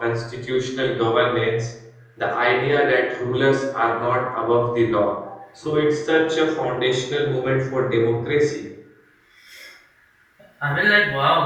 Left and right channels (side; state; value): both; identical; correlation 1.00